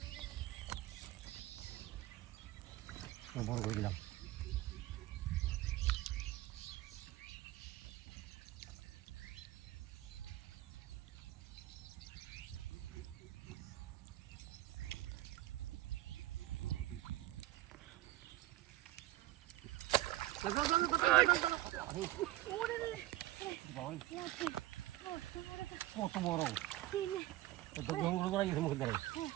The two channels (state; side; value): quieter; left; 16.1 dB